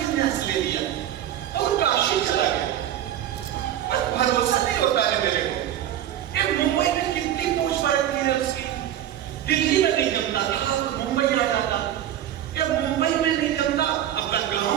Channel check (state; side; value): quieter; left; 11.5 dB